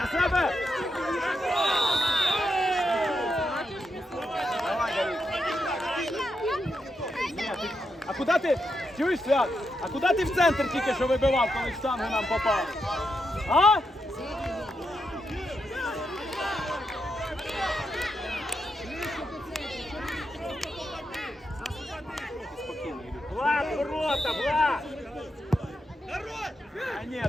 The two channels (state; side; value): normal; both; correlation 0.84